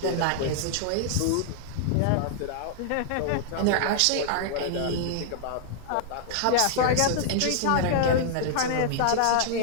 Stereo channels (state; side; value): different; both; correlation -0.01